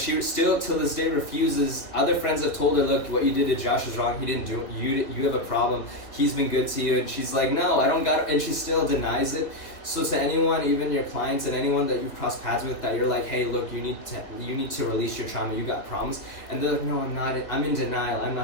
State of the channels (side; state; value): right; late; 2.8 ms